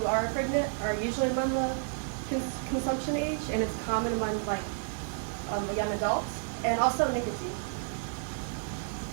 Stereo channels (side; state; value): left; silent; digital silence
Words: are pregnant are usually among the consumption age, and it's common among like young adults, and also nicotine.